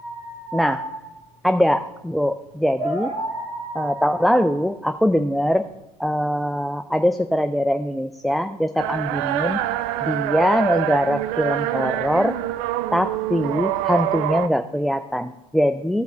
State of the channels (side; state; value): both; normal; correlation 0.81